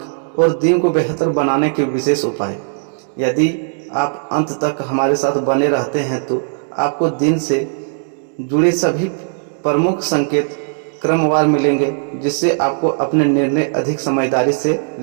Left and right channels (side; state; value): left; silent; digital silence